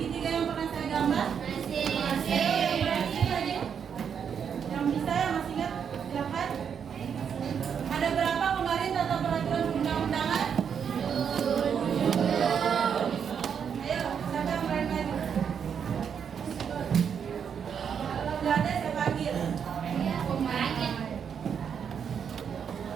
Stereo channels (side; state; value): left; quieter; 7.4 dB